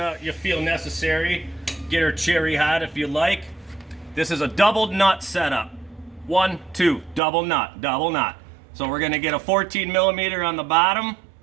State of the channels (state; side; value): drops out; left; at 7.2 s